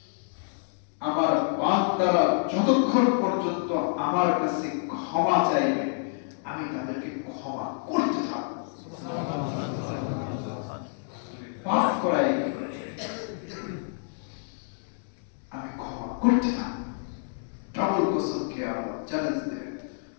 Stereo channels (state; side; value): silent; right; digital silence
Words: আমার বান্দারা যতক্ষণ পর্যন্ত আমার কাছে ক্ষমা চাইবে আমি তাদেরকে ক্ষমা করতে থাকবো। পাপ করাই আমি ক্ষমা করতে থাকবো। ডাবল কসম খেয়ে আল্লাহ চ্যালেঞ্জ দেবেন